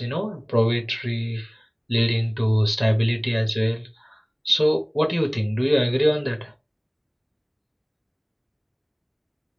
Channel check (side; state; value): both; identical; correlation 1.00